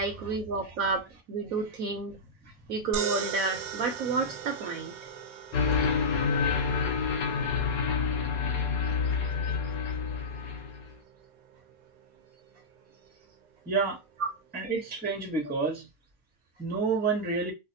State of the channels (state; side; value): normal; both; correlation -0.11